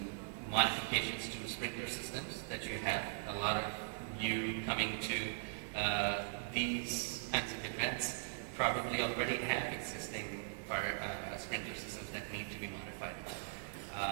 modifications to sprinkler systems that you have. A lot of you coming to these kinds of events probably already have existing fire sprinkler systems that need to be modified.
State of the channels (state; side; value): silent; left; digital silence